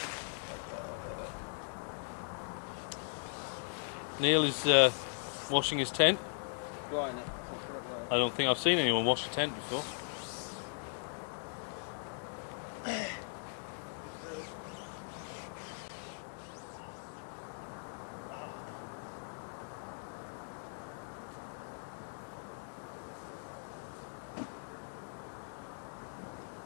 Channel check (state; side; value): silent; right; digital silence